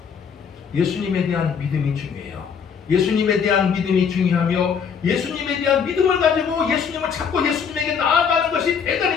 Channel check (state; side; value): quieter; right; 6.7 dB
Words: 예수님에 대한 믿음이 중요해요. 예수님에 대한 믿음이 중요하며 예수님에 대한 믿음을 가지고 예수님을 찾고 예수님에게 나아가는 것이